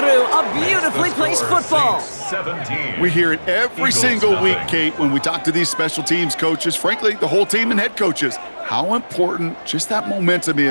A beautifully placed football. We hear it every single week, Kate, when we talk to these special teams coaches, frankly, the whole team and head coaches, how important just that momentum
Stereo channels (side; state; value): both; inverted; correlation -1.00